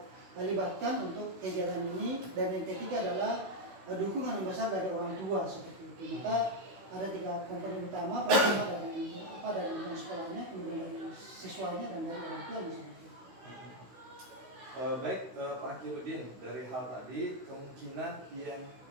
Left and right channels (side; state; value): left; late; 16 ms